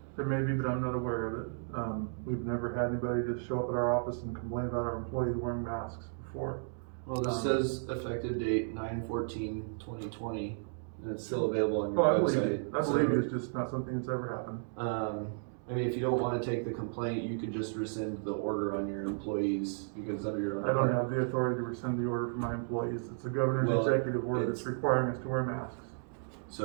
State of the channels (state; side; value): silent; left; digital silence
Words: There may be, but I'm not aware of it. We've never had anybody just show up at our office and complain about our employees wearing masks before. Well, this says effective date 9/14/2020, and it's still available on your Oh, I believe website. you. I believe you, it's just not something that's ever happened. I mean, if you don't wanna take the complaint, you could just rescind the order on your employees, because under your own. I don't have the authority to rescind the order for my employees. It's the governor's Well, executive order that's it's- requiring us to wear masks.